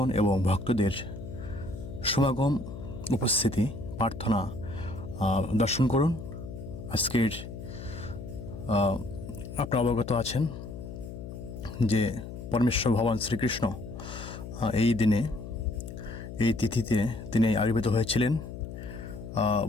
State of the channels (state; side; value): noise; left; hum, 10 dB below the sound